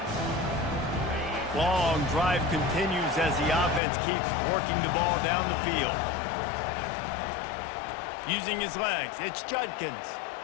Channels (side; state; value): right; drops out; at 3.8 s